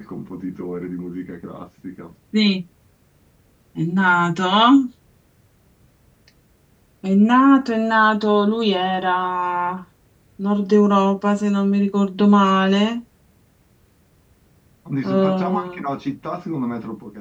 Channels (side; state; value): both; identical; correlation 1.00